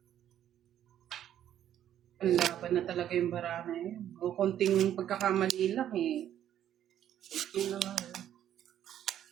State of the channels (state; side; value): quieter; left; 10.9 dB